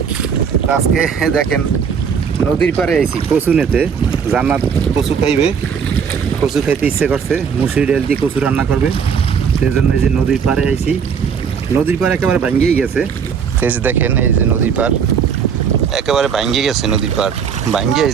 আজকে দেখেন নদীর পাড়ে আইছি কচু নিতে। জান্নাত কচু খাইবে, কচু খাইতে ইচ্ছে করছে, মুসুরি ডাল দিয়ে কচু রান্না করবে। সেই জন্য এই যে নদীর পাড়ে আইছি। নদীর পাড় একেবারে ভাঙ্গিয়ে গেছে। এই যে দেখেন, এই যে নদীর পাড় একেবারে ভাঙ্গিয়ে গেছে। নদীর পাড় ভাঙ্গিয়ে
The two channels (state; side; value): quieter; left; 6.8 dB